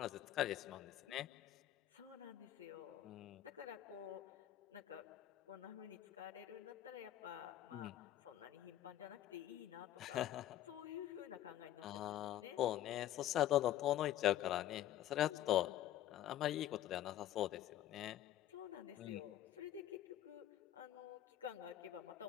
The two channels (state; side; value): quieter; right; 12.7 dB